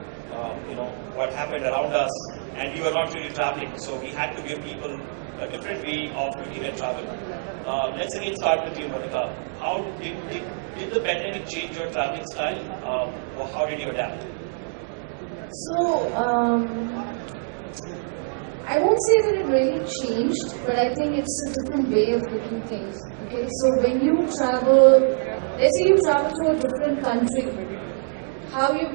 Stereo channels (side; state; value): left; silent; digital silence